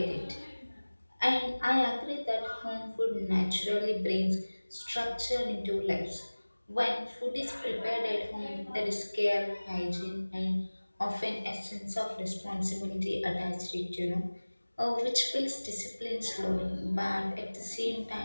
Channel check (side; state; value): both; inverted; correlation -1.00